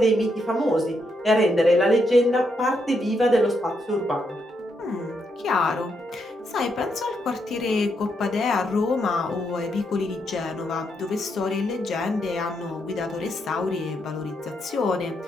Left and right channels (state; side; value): normal; both; correlation 0.79